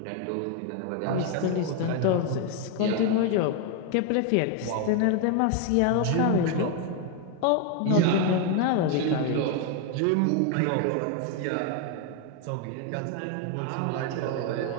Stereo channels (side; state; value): both; different; correlation 0.01